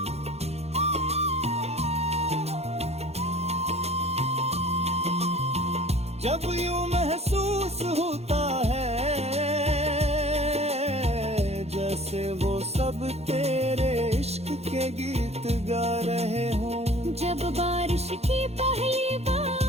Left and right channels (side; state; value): left; late; 0.31 ms